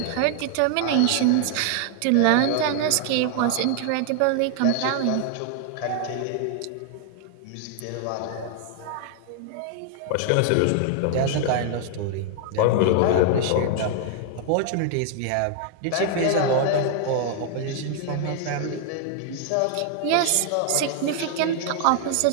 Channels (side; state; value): both; different; correlation 0.00